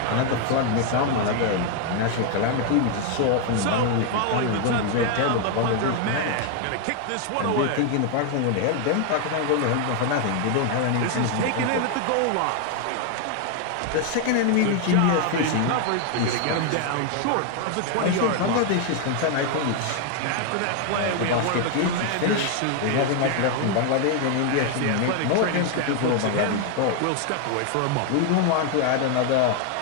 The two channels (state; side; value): different; both; correlation 0.00